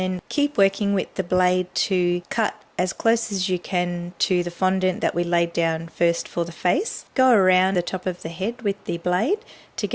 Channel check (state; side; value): identical; both; correlation 1.00